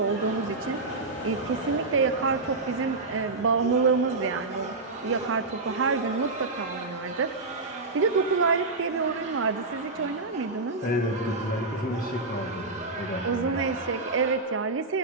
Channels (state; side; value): quieter; left; 3.5 dB